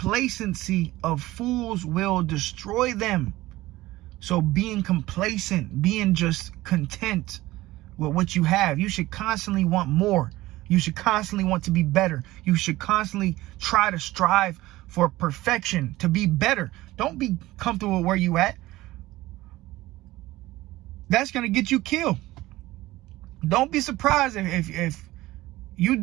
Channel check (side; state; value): left; quieter; 17.6 dB